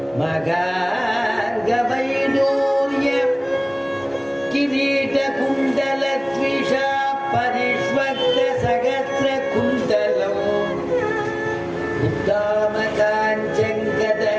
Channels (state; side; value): identical; both; correlation 1.00